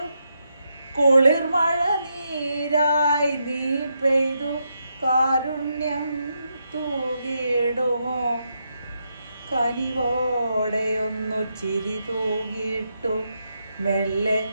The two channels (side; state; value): both; inverted; correlation -0.82